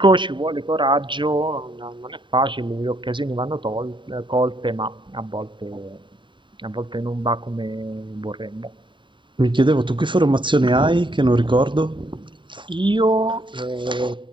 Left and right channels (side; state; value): left; late; 0.23 ms